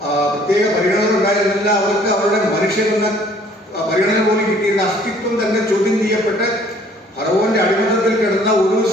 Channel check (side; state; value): both; normal; correlation 0.57